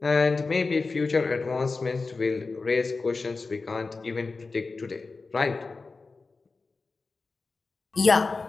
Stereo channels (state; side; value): quieter; right; 4.0 dB